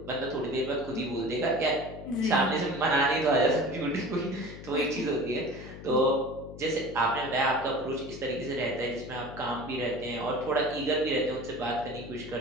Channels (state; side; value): noise; left; hum, 13 dB below the sound